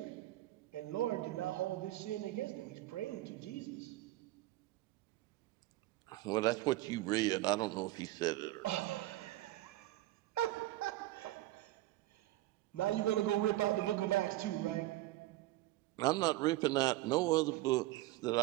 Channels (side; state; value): left; quieter; 16.6 dB